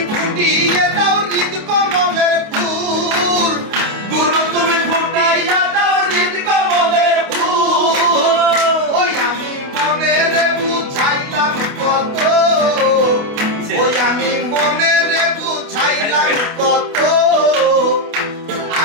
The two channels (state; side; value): late; left; 28 ms